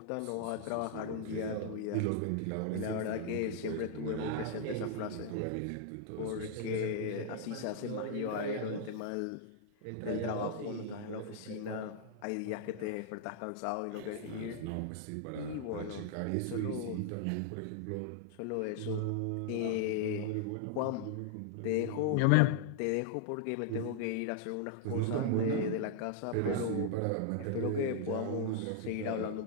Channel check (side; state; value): both; different; correlation -0.01